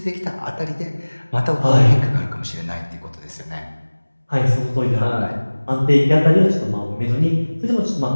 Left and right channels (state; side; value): inverted; both; correlation -1.00